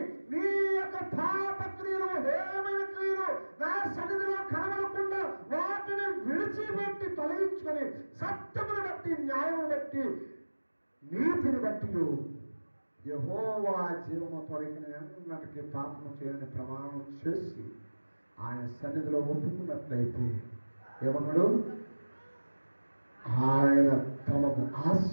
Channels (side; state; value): both; inverted; correlation -1.00